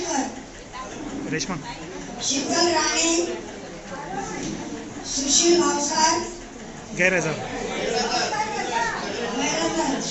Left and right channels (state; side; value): identical; both; correlation 1.00